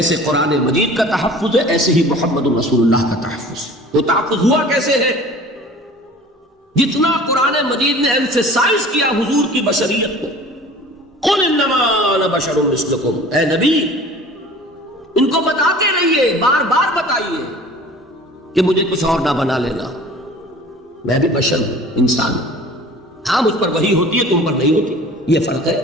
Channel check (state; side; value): normal; both; correlation 0.44